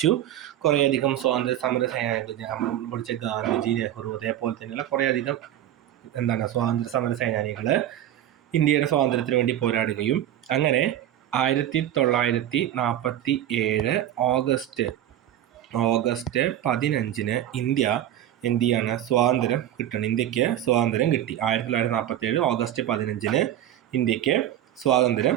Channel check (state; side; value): quieter; left; 11.9 dB